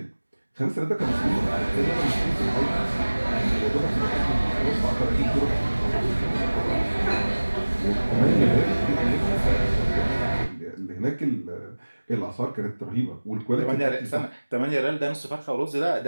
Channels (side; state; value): both; inverted; correlation -1.00